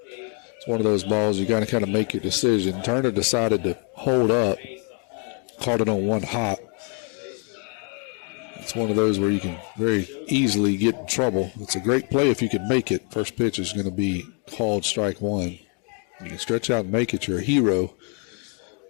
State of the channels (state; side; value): quieter; right; 39.4 dB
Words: It's one of those balls you got to kind of make your decision. Turner decided to hold up, caught it on 1 hop. It's one of those where you can very easily get in trouble. It's a great play if you can make it. First pitch is going to be called strike 1. You can stretch out and make it, you're a hero.